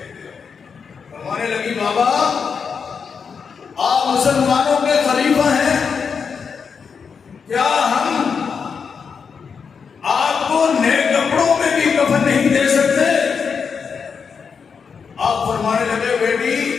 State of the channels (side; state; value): right; quieter; 6.0 dB